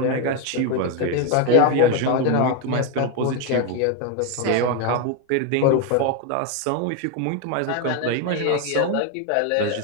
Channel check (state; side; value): different; both; correlation 0.02